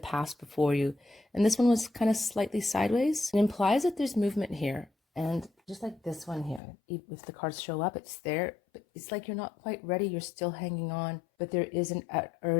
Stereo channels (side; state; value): right; drops out; at 6.6 s